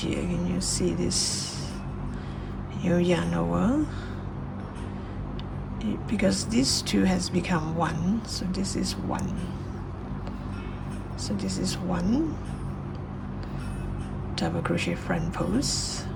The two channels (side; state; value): both; identical; correlation 1.00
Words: here. Can you see this? You yarn over. Because this 2 has become 1, so this is 1. So this is 1 double crochet front post.